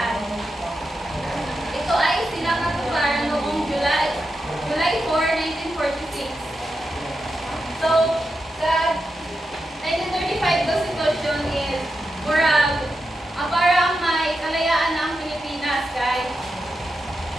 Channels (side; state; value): both; normal; correlation 0.88